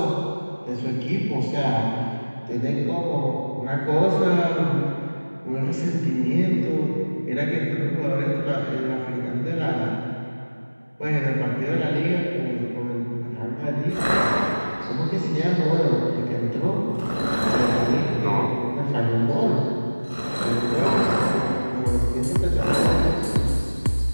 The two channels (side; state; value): both; inverted; correlation -1.00